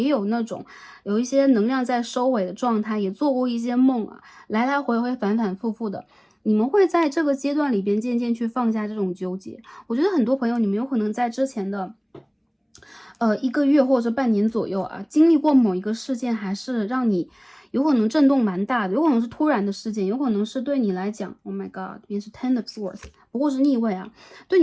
有那种有一些能量在收尾的状态，也做过一些梦啊，来来回回反反复复的。你们会在这个阶段里边渐渐去放下这种纠结。我觉得很多朋友你们有可能在之前的1个月或者半年左右啊，经历过某一个事件，还是让你有可能震动蛮大的，有可能是突然的事件，有可能是对你来讲 Oh my god 这边是 Ten of Swords 不过是逆位啊，对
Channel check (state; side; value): identical; both; correlation 1.00